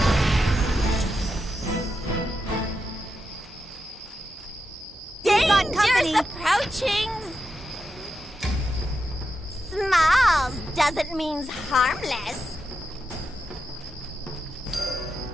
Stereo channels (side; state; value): both; normal; correlation 0.87